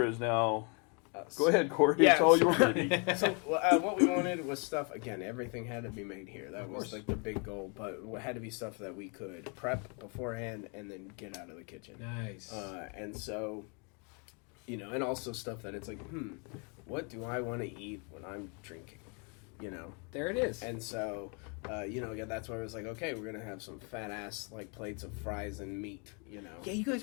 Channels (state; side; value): quieter; right; 35.1 dB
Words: is now... Go ahead, Corey. Yeah, it's all your baby. So what we wanted was stuff. Again, everything had to be made here. That was like the big goal. But it had to be stuff that we could prep beforehand and then get out of the kitchen. Nice. And so, and also stuff that it's like, what do I want to eat when I'm drinking? There it is. And so, again, that's why I was like, okay, we're gonna have some fat ass like plates of fries and meat. Yeah, you guys